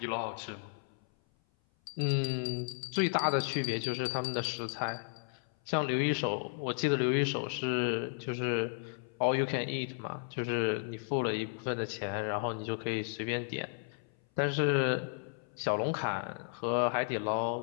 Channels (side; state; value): right; silent; 55 dB below the other